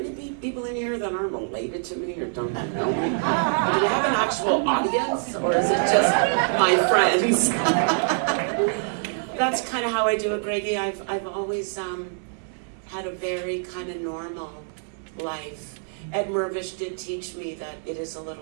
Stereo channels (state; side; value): silent; left; digital silence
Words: people in here that aren't related to me or don't know me? Do you have an actual audience, or is it just my friends? That's kind of how I do it, Greggy. I've always had a very kind of normal life. Ed Mervish did teach me that it is a